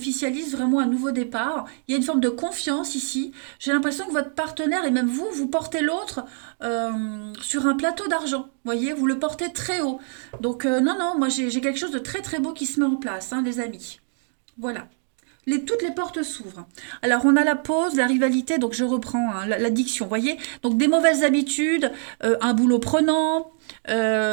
vraiment un nouveau départ. Il y a une forme de confiance ici. J'ai l'impression que votre partenaire et même vous, vous portez l'autre sur un plateau d'argent. Vous voyez, vous le portez très haut. Donc non, non, moi j'ai quelque chose de très très beau qui se met en place, hein, les amis. Voilà. Toutes les portes s'ouvrent. Alors, on a la pause, la rivalité, donc je reprends hein, l'addiction, voyez. Donc, des mauvaises habitudes, un boulot prenant,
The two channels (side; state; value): left; silent; 58 dB below the other